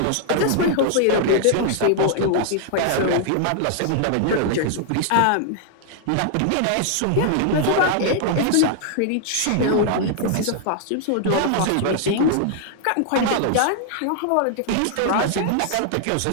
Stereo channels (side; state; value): both; different; correlation 0.00